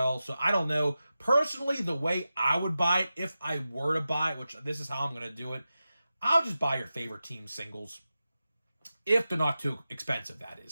So I don't know. Personally, the way I would buy it, if I were to buy it, which this is how I'm going to do it, I'll just buy your favorite team singles. If they're not too expensive, that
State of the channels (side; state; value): both; inverted; correlation -0.93